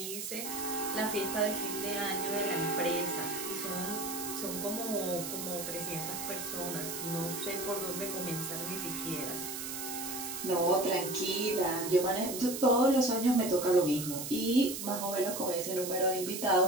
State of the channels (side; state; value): right; noise; hiss, 6 dB below the sound